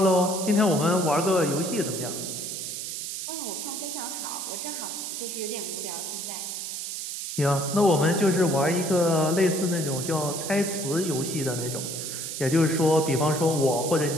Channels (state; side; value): noise; right; hiss, 5 dB below the sound